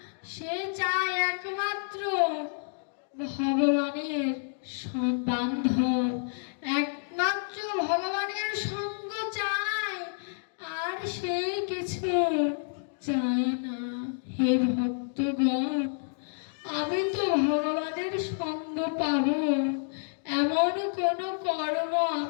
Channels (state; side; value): silent; right; digital silence